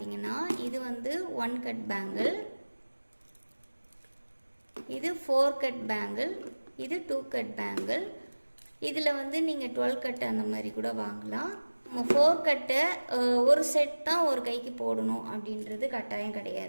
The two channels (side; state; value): both; inverted; correlation -1.00